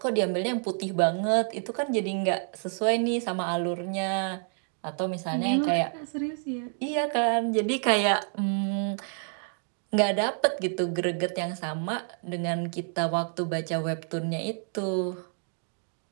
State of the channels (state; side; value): silent; left; 57 dB below the other